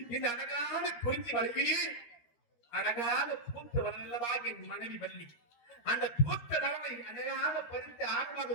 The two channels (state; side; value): late; right; 13 ms